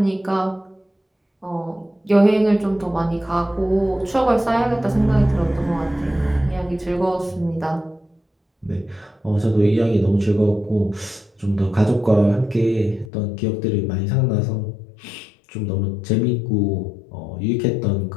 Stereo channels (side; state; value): right; drops out; at 13.1 s